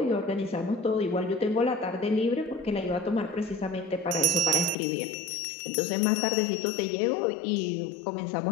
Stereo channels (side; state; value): right; drops out; at 4.8 s